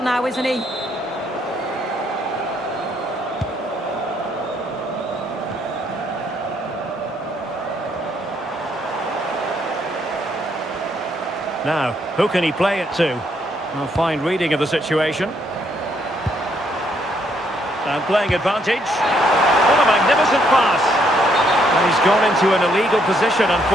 now, isn't he? Now, who can he play it to? A fine reading of the situation. And playing advantage. What a magnificent pass. And he's gone into an illegal position,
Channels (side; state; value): both; normal; correlation 0.71